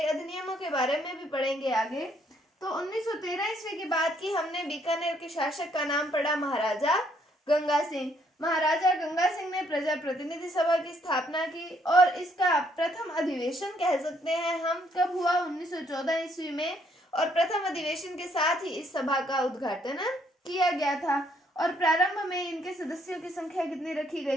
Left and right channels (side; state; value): both; normal; correlation 0.69